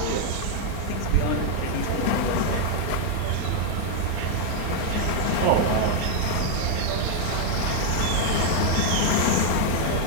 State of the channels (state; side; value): different; both; correlation 0.00